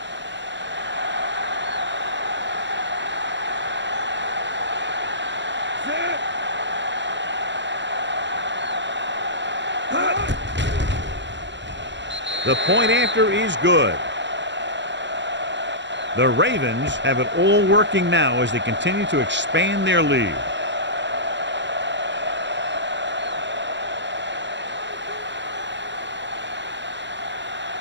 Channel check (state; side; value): late; left; 0.52 ms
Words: The point after is good. The Ravens have it all working now as they continue to expand their lead.